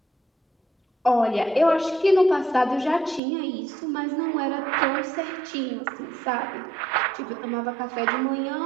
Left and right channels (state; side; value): drops out; left; at 3.2 s